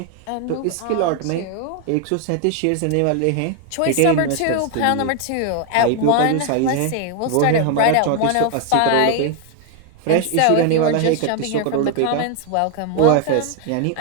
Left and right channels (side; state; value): both; different; correlation 0.01